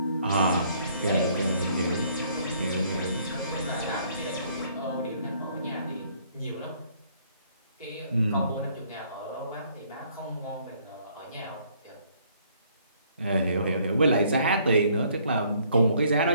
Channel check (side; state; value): both; inverted; correlation -0.64